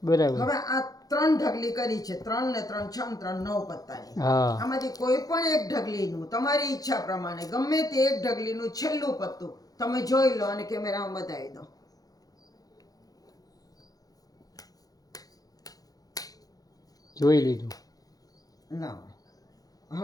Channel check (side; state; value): right; late; 0.18 ms